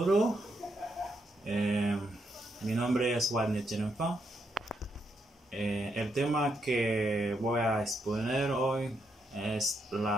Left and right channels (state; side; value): normal; both; correlation 0.79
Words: mi nombre es Wadner Chenenfan. El tema que voy a exponer hoy es